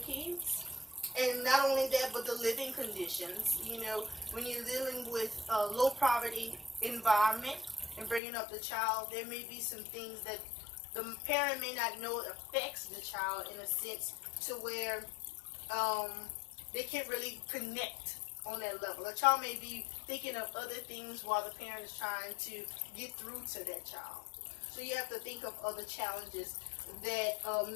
kids. And not only that, but the living conditions. When you're dealing with a low poverty environment and bringing up the child, there may be some things that the parent may not know affects the child in a sense to where they can't really connect on that level. A child may be thinking of other things while the parent is trying to get through to that child. So you have to think of other challenges that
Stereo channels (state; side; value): drops out; right; at 8.2 s